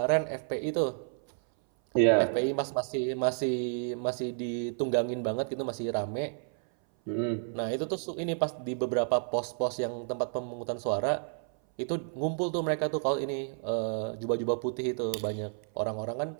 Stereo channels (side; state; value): left; silent; 57 dB below the other